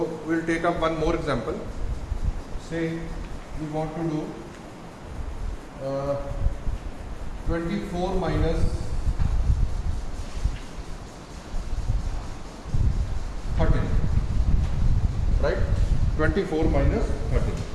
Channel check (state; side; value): identical; both; correlation 1.00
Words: we'll take up one more example. Say we want to do 24 minus 13, right? 24 minus 13.